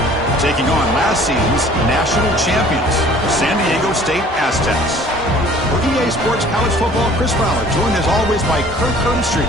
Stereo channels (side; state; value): both; normal; correlation 0.51